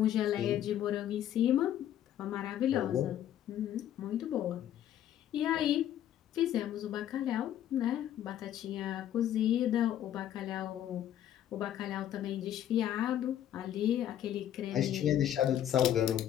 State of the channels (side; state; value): right; quieter; 11.1 dB